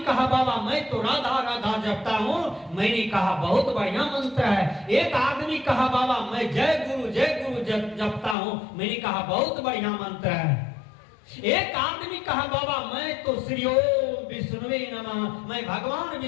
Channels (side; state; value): right; drops out; at 8.3 s